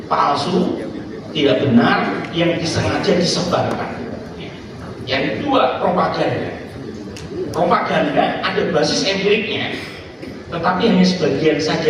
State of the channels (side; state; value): both; identical; correlation 1.00